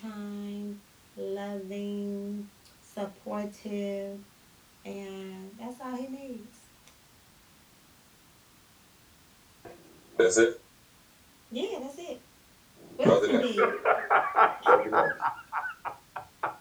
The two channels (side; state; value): both; identical; correlation 1.00